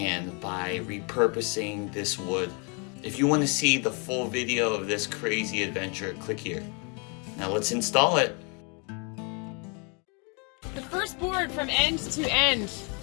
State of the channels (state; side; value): quieter; right; 34.5 dB